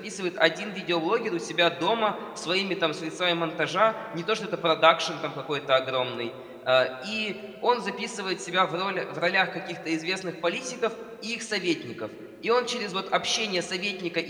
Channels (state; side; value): identical; both; correlation 1.00